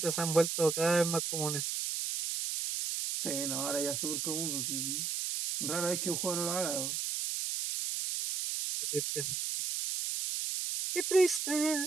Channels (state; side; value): noise; right; hiss, 1 dB below the sound